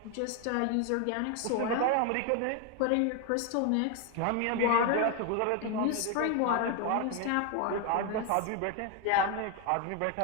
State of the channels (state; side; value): different; both; correlation 0.01